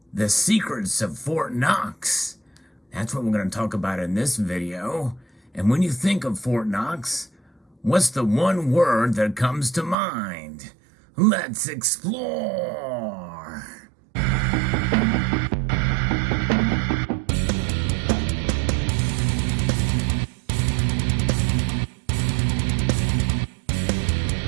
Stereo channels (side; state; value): left; drops out; at 10.0 s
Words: The secrets of Fort Knox. That's what we're going to talk about in this video. And when you think of Fort Knox, what's the one word that comes to mind? Let's explore.